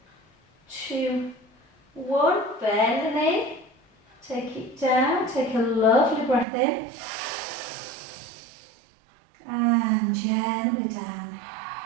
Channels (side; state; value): left; drops out; at 6.5 s